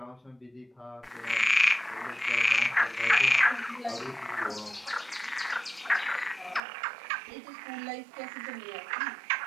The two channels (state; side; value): drops out; left; at 6.6 s